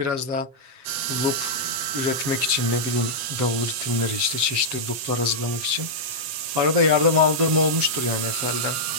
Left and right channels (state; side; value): late; left; 7.9 ms